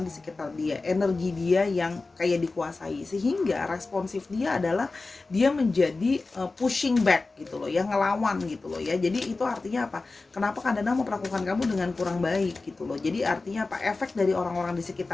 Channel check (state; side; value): quieter; right; 3.6 dB